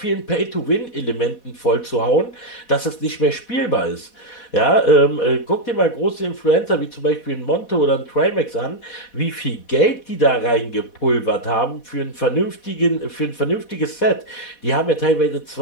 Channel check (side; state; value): right; late; 4.1 ms